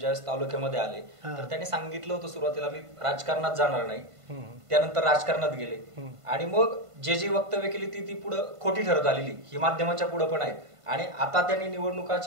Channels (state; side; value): late; left; 1.5 ms